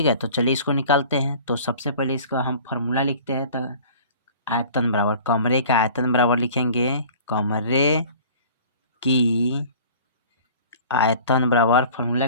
है, तो चलिए इसको निकालते हैं। तो सबसे पहले इसका हम फार्मूला लिखते हैं। तो आयतन बराबर कमरे का आयतन बराबर लिखेंगे कमरे की आयतन बराबर, फार्मूला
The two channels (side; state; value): both; inverted; correlation -0.45